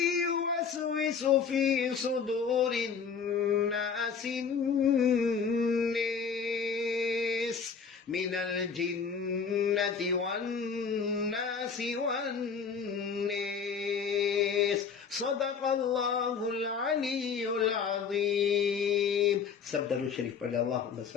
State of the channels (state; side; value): quieter; right; 6.1 dB